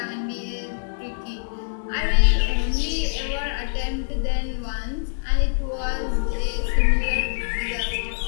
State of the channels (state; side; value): silent; right; 62 dB below the other